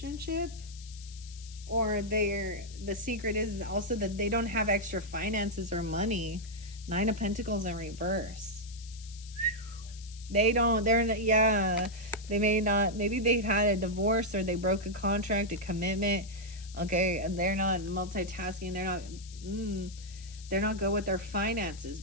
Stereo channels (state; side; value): noise; left; hiss, 18 dB below the sound